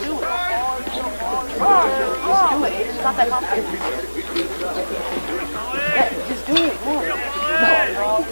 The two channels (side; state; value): both; inverted; correlation -1.00